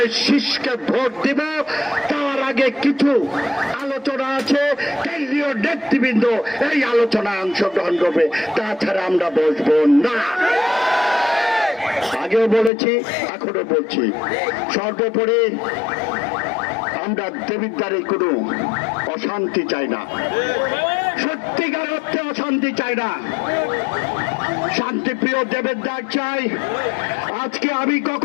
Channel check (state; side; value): drops out; right; at 12.7 s